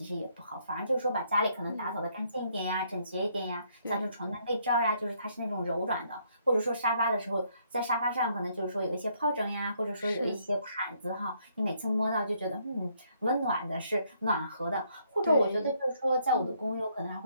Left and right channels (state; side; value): inverted; both; correlation -0.70